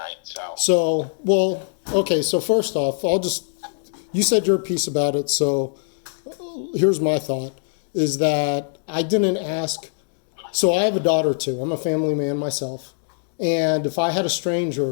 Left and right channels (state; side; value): silent; right; digital silence